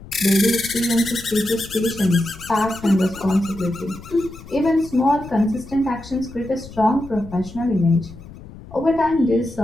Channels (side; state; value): left; noise; rumble, 16 dB below the sound